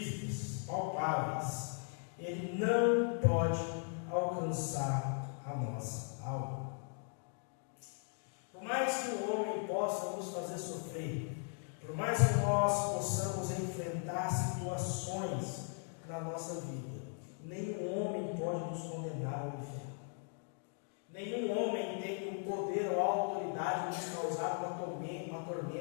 palpáveis. Ele não pode alcançar a nossa alma. Por mais que o homem possa nos fazer sofrer, por mais que nós possamos enfrentar situações na nossa vida, nenhum homem pode nos condenar ao inferno. Nenhum homem tem o poder ou a autoridade de nos causar uma tormenta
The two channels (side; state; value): right; silent; 52 dB below the other